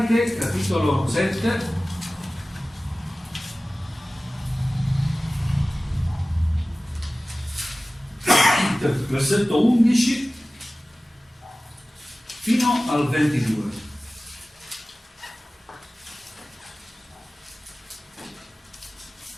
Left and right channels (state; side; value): normal; both; correlation 0.97